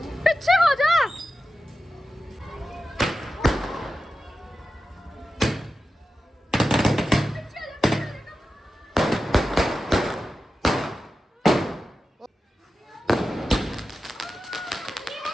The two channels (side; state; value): both; normal; correlation 0.92